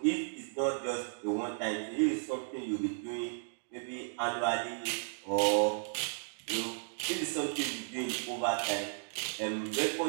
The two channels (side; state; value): left; silent; digital silence